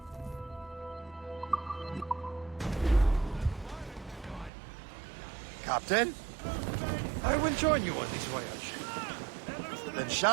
Captain? I will join you on this voyage. Then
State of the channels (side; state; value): left; drops out; at 4.5 s